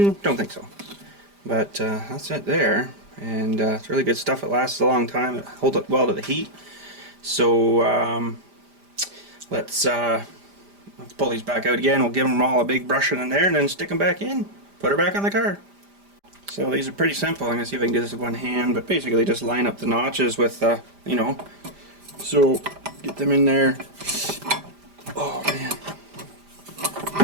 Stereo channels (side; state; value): left; late; 5.0 ms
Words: don't think so. But that's it there. And it's really good stuff. It lasts a long time. It holds up well to the heat. So let's pull these back out again. We'll give them all a big brushing in there and then stick them back in. Put her back on the car. So these are pretty simple. I'm going to see if I can do this with one hand. But basically just line up the notches with, you know. So get them in there. Oh man.